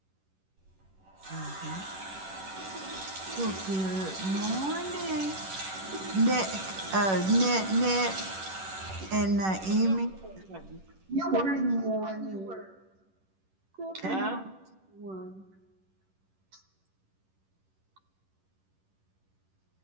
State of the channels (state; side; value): late; left; 10 ms